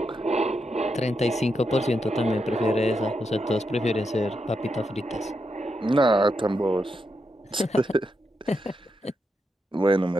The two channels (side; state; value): both; normal; correlation 0.84